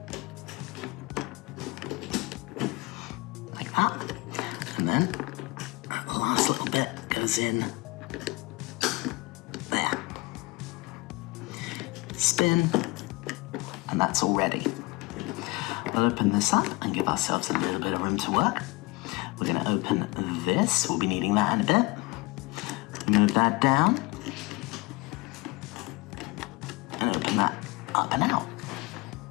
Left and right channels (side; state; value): right; quieter; 23.5 dB